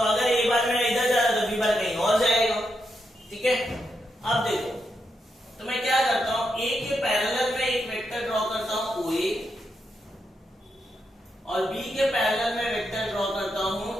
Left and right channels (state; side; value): normal; both; correlation 0.83